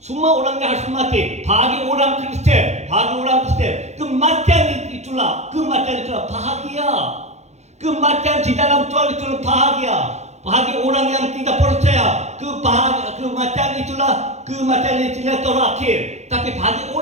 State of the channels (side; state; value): left; late; 0.33 ms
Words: orang yang harus mati. Bagi orang Kristen, kematian itulah bahagia. Kematian di dalam Tuhan itu bahagia. Bahagia orang yang tidak percaya. Kematian itulah terakhir. Tapi bagi